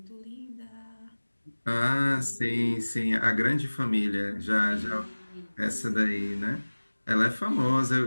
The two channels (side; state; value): both; inverted; correlation -1.00